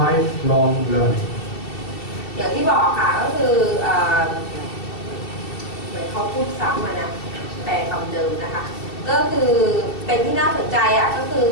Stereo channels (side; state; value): right; late; 2.7 ms